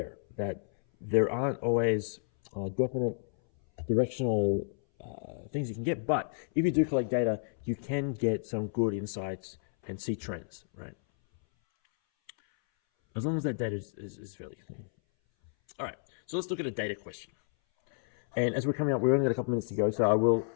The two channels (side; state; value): right; silent; 57 dB below the other